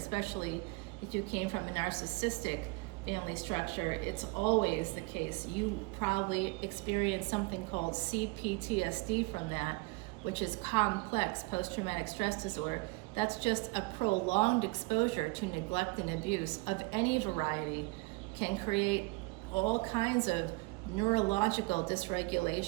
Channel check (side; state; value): left; quieter; 26.2 dB